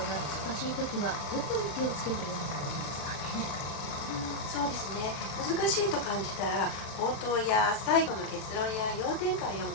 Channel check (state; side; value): late; right; 36 ms